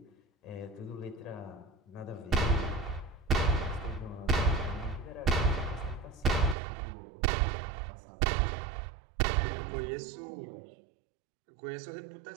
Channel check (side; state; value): left; drops out; at 6.6 s